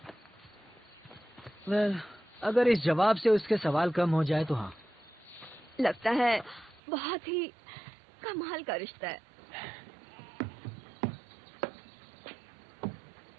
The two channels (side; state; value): left; drops out; at 6.8 s